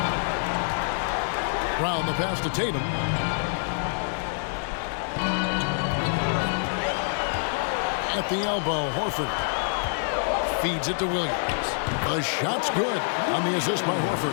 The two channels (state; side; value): silent; right; digital silence